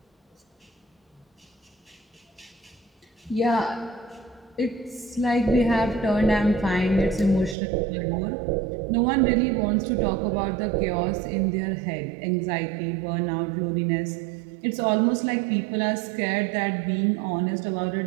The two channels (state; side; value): drops out; left; at 7.6 s